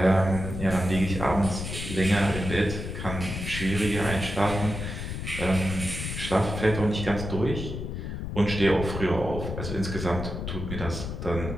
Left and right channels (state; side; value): noise; left; rumble, 6 dB below the sound